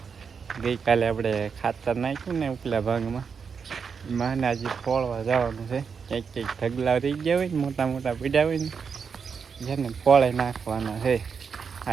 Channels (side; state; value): left; quieter; 6.1 dB